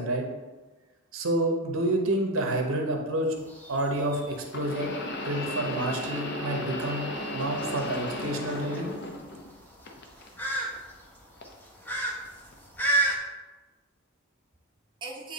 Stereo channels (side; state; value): both; normal; correlation 0.08